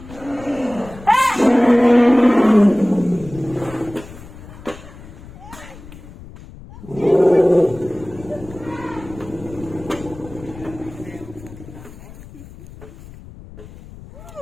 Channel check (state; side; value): noise; left; rumble, 17 dB below the sound